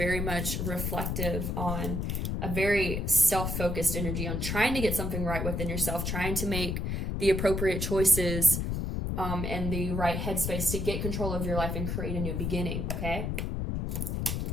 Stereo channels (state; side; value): noise; left; rumble, 1 dB below the sound